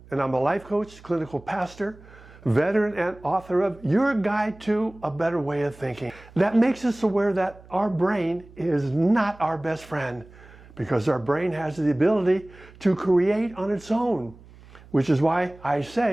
and I'm a life coach, clinical pastor, veteran, and author of Your Guide to a Better Way of Thinking. That makes us aware that our brain is not our best friend, because our brain has the ability to create on its own, which is why I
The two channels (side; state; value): right; noise; hum, 22 dB below the sound